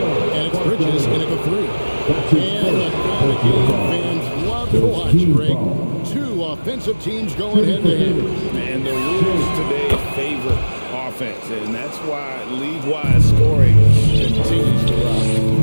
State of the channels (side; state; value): both; inverted; correlation -1.00